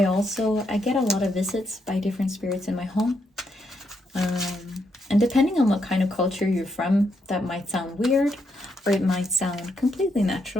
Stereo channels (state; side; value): normal; both; correlation 0.78